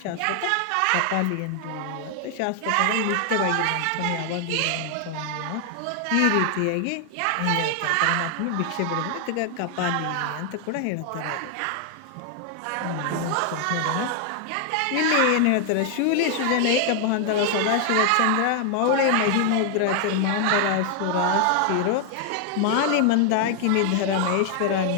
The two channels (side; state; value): both; different; correlation 0.00